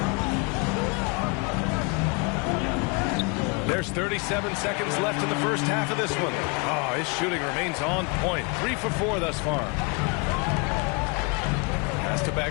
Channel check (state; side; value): quieter; right; 31.6 dB